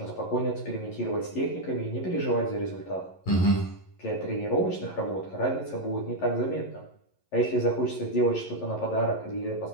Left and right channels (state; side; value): late; right; 11 ms